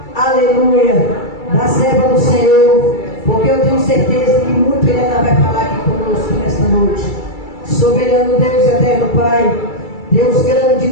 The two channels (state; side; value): late; right; 2.3 ms